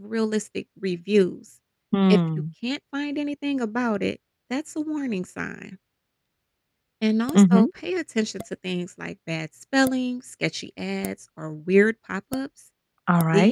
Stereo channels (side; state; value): both; identical; correlation 1.00